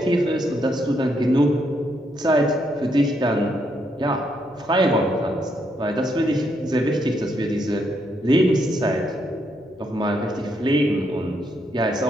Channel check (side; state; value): left; noise; hum, 28 dB below the sound